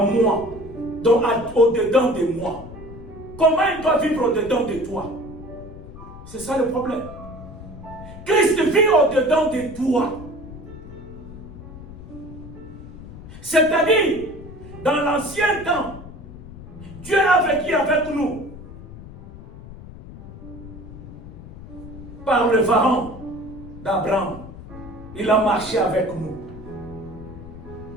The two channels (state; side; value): noise; left; rumble, 15 dB below the sound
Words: moi. Donc au-dedans de moi. Comment il doit vivre au-dedans de toi? C'est ça le problème. Christ vit au-dedans de toi. C'est-à-dire, dans l'ancien temps, Dieu a vécu avec nous. Par le pharaon d'Abraham. Il a marché avec nous.